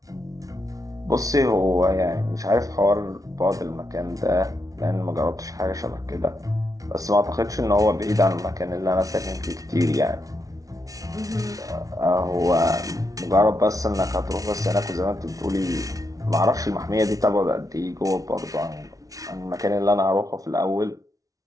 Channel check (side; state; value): left; late; 0.17 ms